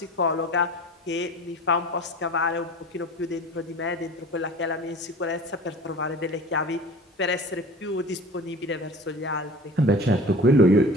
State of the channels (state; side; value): normal; both; correlation 0.40